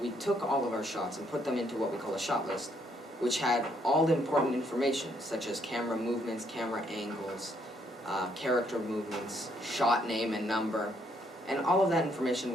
we took all of our shots and put them into what we call a shot list, which had all the important information, such as camera movements, camera angles, character movements, shot name and number, and all of that information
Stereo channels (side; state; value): both; normal; correlation 0.71